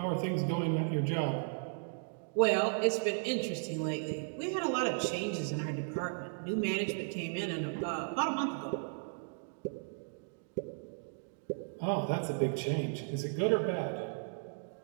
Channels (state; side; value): silent; left; digital silence